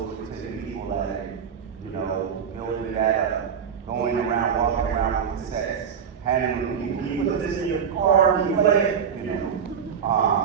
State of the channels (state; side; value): quieter; left; 7.3 dB